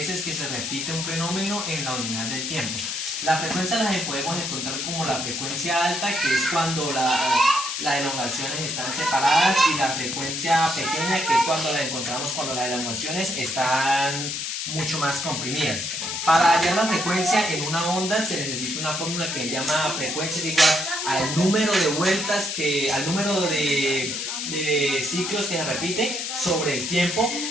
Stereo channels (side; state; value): left; noise; hiss, 3 dB below the sound